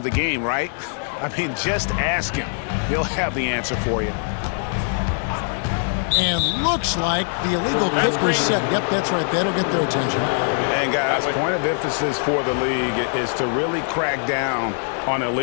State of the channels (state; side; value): silent; right; 59 dB below the other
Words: the game, right? I mean, just ask him. He'll have the answer for you. And looks like the illegal kick was set. Yep, that's right. That'll get their attention. And guys, point of emphasis for the league is to really crack down on